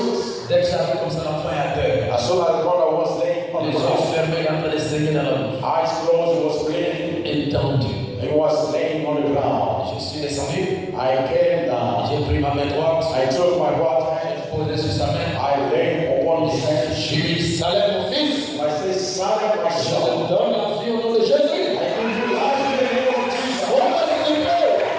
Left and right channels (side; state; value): both; identical; correlation 1.00